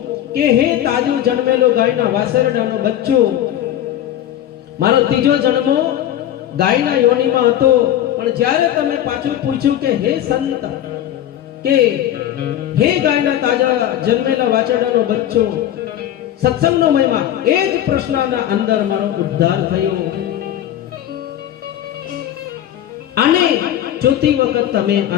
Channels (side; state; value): right; quieter; 11.8 dB